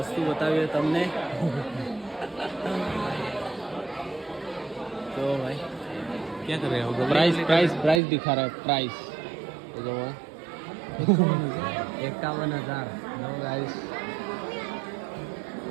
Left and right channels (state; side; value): drops out; left; at 8.0 s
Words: બતાવીએ તમને. तो भाई क्या कर रहे हो? प्राइस प्राइस प्राइस दिखा रहा है प्राइस. तो जो है 51,000 नो गाइस.